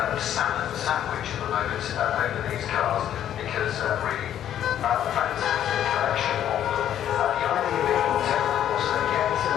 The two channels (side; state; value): right; quieter; 10.7 dB